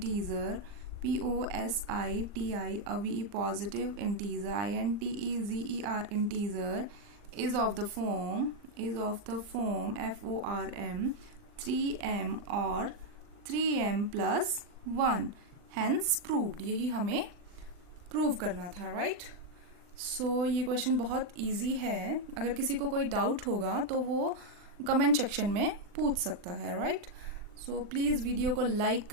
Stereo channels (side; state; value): left; late; 40 ms